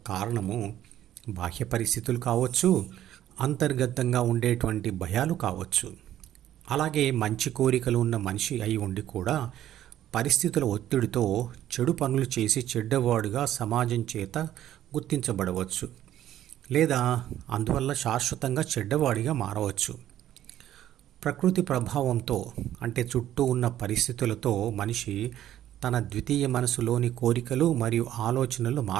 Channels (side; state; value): left; quieter; 12.2 dB